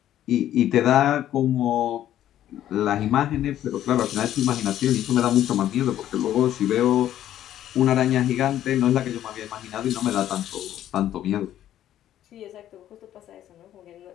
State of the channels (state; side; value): quieter; right; 12.0 dB